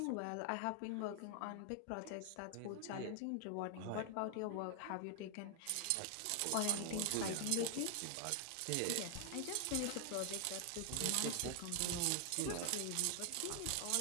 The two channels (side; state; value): both; different; correlation 0.00